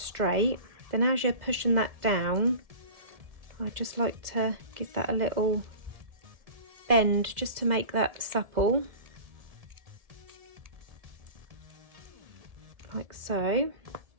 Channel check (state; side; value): late; left; 2.0 ms